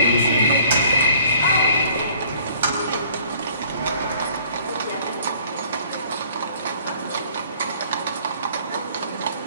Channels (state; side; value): inverted; both; correlation -0.55